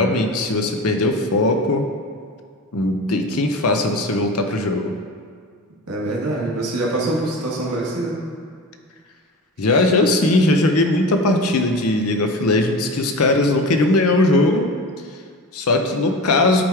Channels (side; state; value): both; normal; correlation 0.31